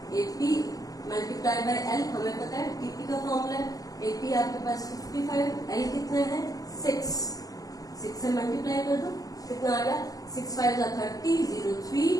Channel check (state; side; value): late; right; 0.17 ms